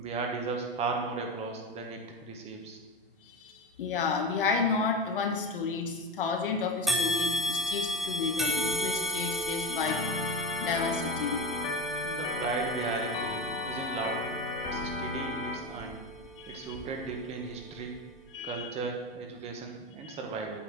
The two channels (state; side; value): normal; both; correlation 0.22